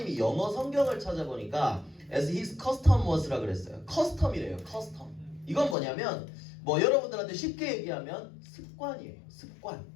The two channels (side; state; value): right; drops out; at 5.8 s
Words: 영어 성경을 찾아보니까 as his custom was라 그랬어요. 커스텀이래요. 커스텀. 이건 뭐냐면 뭐 여러분들한테 쉽게 얘기하면 습관이에요. 습관.